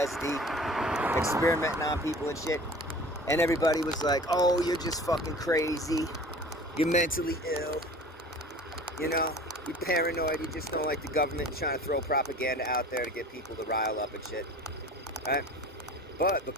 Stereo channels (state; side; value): normal; both; correlation 0.42